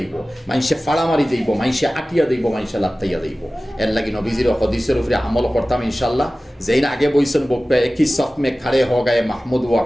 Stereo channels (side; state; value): both; normal; correlation 0.97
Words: মানুষে ফাড়া মারি যাইব, মানুষে আটিয়া যাইব, মানুষে লাত্তাইয়া যাইব। এর লাগি নবীজির হদিসের উপরে আমল করতাম ইনশাল্লাহ। যেই না আগে বইছেন বকবে একই সফ মে খাড়ে হ গায়ে মাহমুদ ওয়া